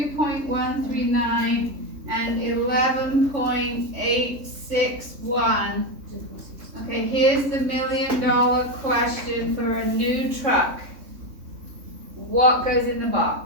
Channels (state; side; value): late; left; 3.6 ms